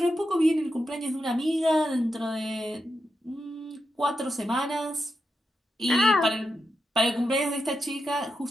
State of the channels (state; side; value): normal; both; correlation 0.87